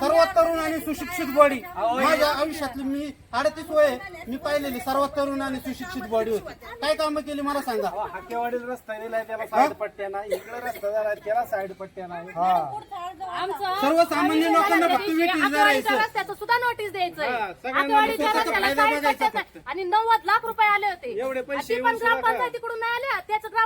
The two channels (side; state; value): both; identical; correlation 1.00